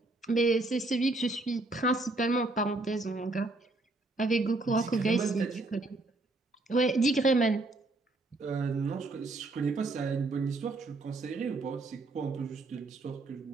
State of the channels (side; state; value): left; quieter; 3.1 dB